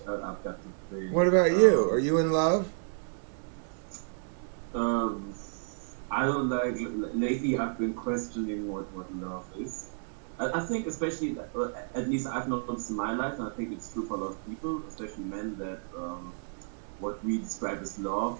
got to think. What about you? Are you in love? I don't like. Lately, I've been questioning what love is. I think, especially, at least I've noticed in my life, and I think it's true for a lot of people, especially men, that what we describe as love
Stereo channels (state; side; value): silent; left; digital silence